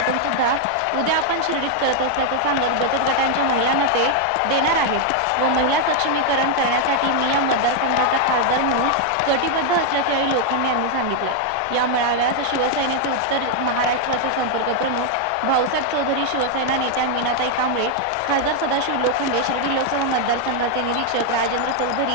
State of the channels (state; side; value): different; both; correlation 0.00